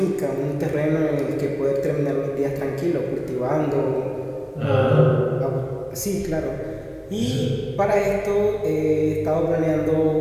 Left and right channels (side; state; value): both; identical; correlation 1.00